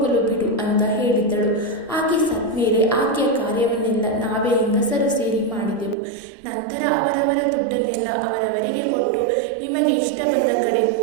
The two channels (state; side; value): drops out; left; at 6.0 s